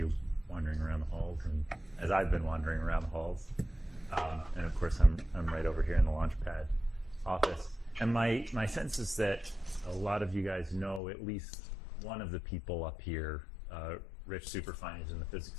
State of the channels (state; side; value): drops out; right; at 11.0 s